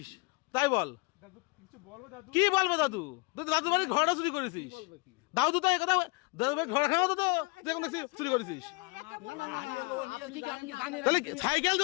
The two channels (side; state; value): right; quieter; 27.4 dB